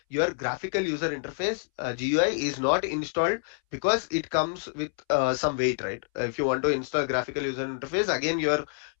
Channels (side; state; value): right; silent; 60 dB below the other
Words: your graphical user interface GUI is not installed, because it comes with some weight, right? If you want to install graphical user interface, again your